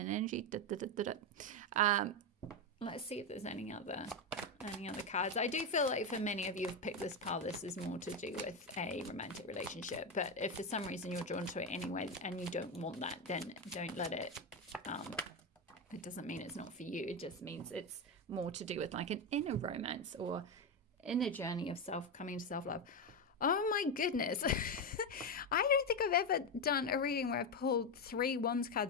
energy. Da, da, da, da, da. Let's see if there's any other cards. I do feel like for many of you who've picked this pile, this is more to do with a romantic relationship. But if for some reason you're drawn to it anyway and you don't want that, then don't let it. It doesn't mean it's not for you. It just means it's more to do with like an inner romance or inner journey of coming to self-love. Oh my goodness. I don't think I've ever done a reading where I've pulled 3 Wands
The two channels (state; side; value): normal; both; correlation 0.11